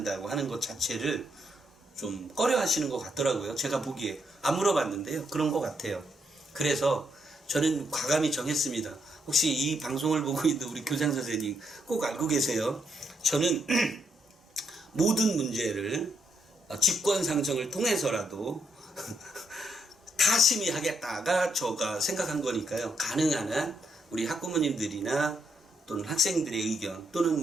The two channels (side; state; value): both; normal; correlation 0.78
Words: 하는 것 자체를 좀 꺼려하시는 것 같더라고요. 제가 보기에 안 물어봤는데요. 그런 것 같아요. 그래서 저는 과감히 정했습니다. 혹시 이 방송을 보고 있는 우리 교장 선생님 꼭 알고 계세요. 저는 모든 문제를 직권상정을 통해서라도 다 심의하겠다가 제가 생각한 거니까요. 가능한 한 우리 학부모님들이나 또는 학생들의 의견 또는